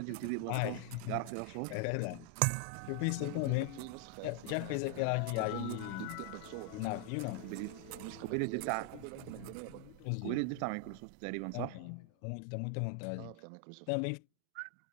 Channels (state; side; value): different; both; correlation 0.00